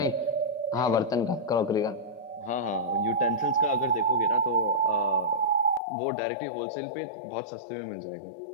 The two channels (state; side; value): drops out; right; at 5.8 s